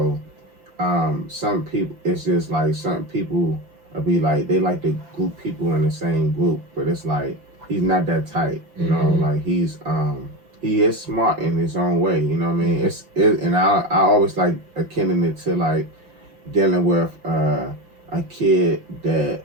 some people, it's just like some people be like, they like to group people in the same group, but it's like he's not that tight, you know. Like he is smart in his own way, you know what I mean. And I always like akin it to like dealing with a kid that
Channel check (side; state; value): left; late; 6.0 ms